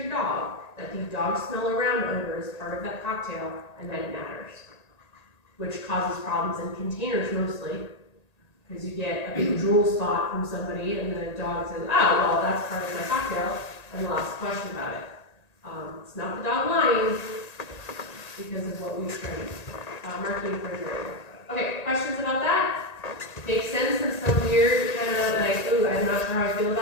dog that the dog smell around odor is part of that cocktail and that it matters, which causes problems in containers mostly, because you get a big drool spot from somebody and the dog says, oh, well, that's part of my cocktail, and they'll ask a question about it. It's not the dog lying because of what we've trained. Marking refrigerator. Okay, questions about that? Makes sense in some weird kind of like, ooh, I'm not sure how I feel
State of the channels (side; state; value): right; late; 1.9 ms